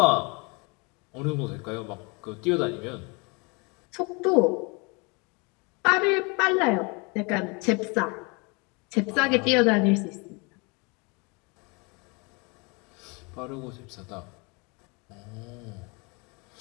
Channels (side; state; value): right; quieter; 30.0 dB